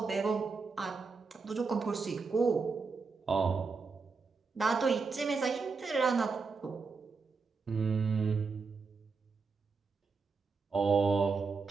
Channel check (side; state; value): left; quieter; 4.7 dB